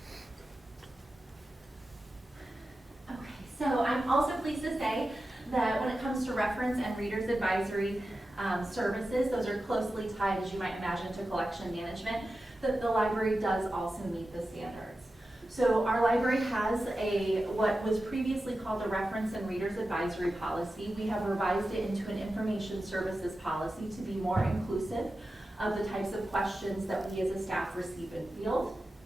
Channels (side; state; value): both; normal; correlation 0.93